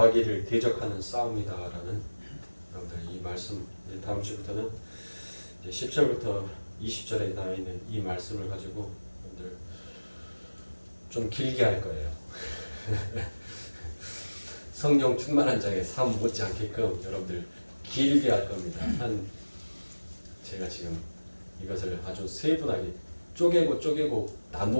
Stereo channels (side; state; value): both; inverted; correlation -1.00